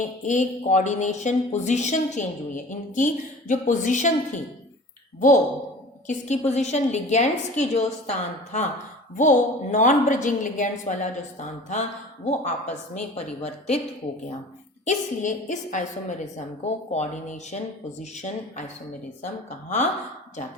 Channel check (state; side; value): normal; both; correlation 0.41